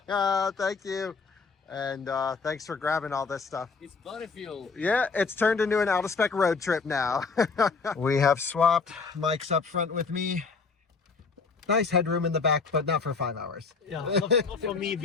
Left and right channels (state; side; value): quieter; right; 4.7 dB